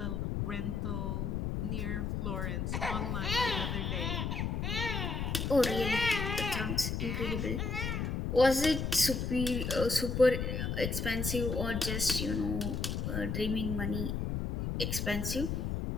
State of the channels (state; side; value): noise; left; rumble, 1 dB below the sound